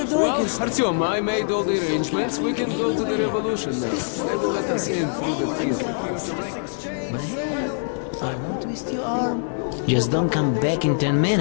drink Well, instead. Artyom, I made all the arrangements. We can go to the revolution now. This is They will let us in through the anything prison. goes. But hey, I won't twist your arm. Just don't come back in 10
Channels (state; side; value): silent; right; digital silence